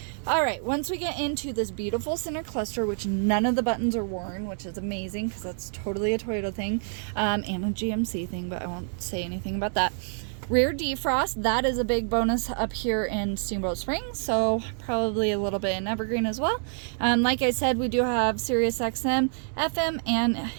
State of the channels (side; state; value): left; silent; 60 dB below the other